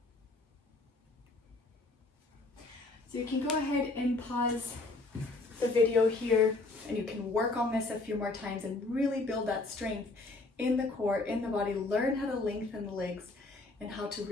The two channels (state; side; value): quieter; right; 3.2 dB